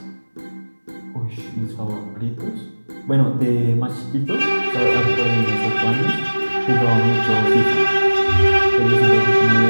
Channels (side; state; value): both; inverted; correlation -1.00